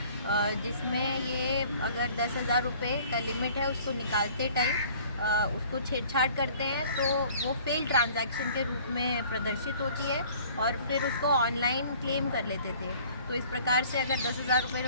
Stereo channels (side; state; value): both; inverted; correlation -0.52